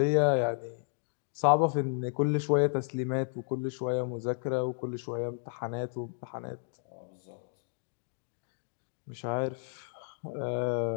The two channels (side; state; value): right; silent; 56 dB below the other